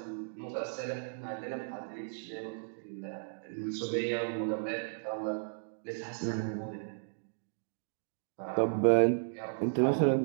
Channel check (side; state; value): left; silent; digital silence